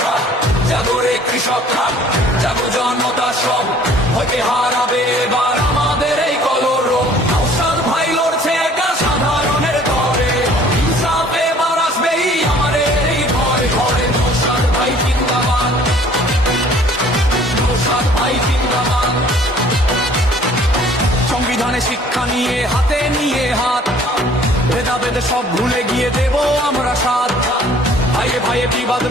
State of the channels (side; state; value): both; normal; correlation 0.54